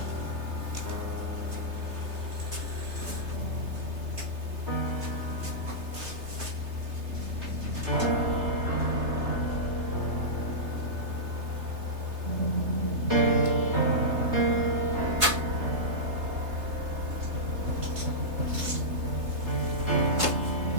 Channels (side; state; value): left; late; 3.3 ms